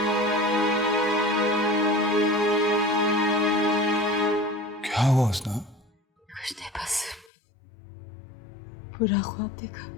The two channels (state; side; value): drops out; right; at 7.3 s